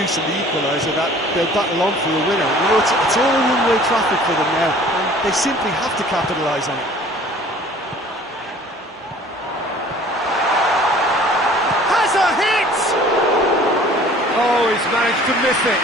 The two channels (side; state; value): both; normal; correlation 0.50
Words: the equaliser that they'll battle on for a winner. You know, it's all one-way traffic for them now, and they simply have to capitalise on it. Oh, he's managed to miss it.